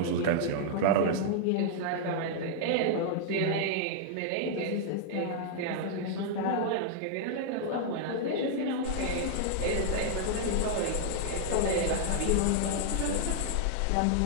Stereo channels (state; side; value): different; both; correlation -0.01